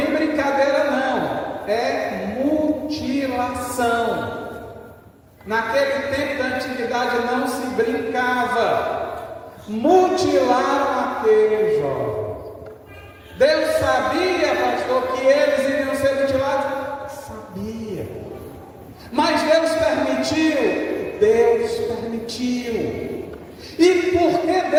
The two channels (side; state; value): both; identical; correlation 1.00